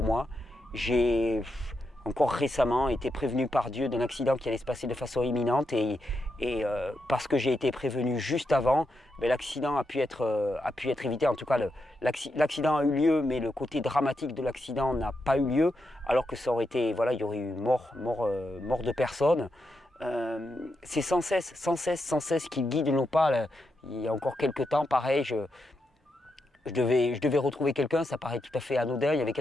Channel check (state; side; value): normal; both; correlation 0.85